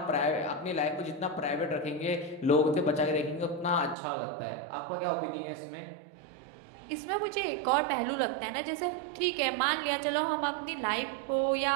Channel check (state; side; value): drops out; left; at 4.0 s